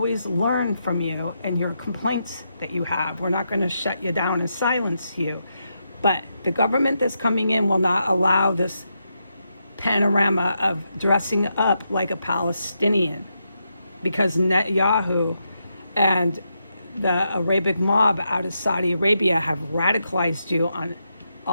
learn from you and your complaints that you have. We're not going to shut you down and silence you. But the government that's coming in will not allow this panorama of dressing up like a Palestinian, because Netanyahu and the Arabic mob out of Saudi Arabia have radicalized you on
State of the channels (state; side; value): inverted; both; correlation -0.83